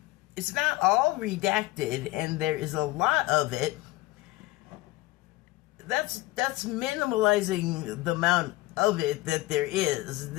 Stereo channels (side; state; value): right; quieter; 19.1 dB